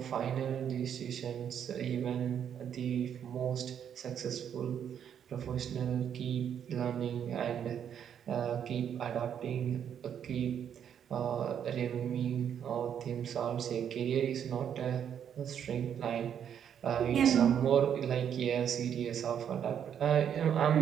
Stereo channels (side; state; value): left; quieter; 8.7 dB